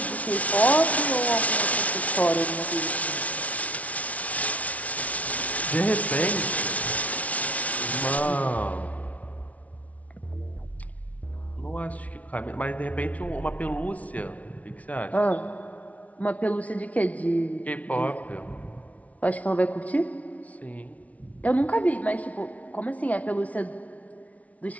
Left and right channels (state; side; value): late; right; 0.068 ms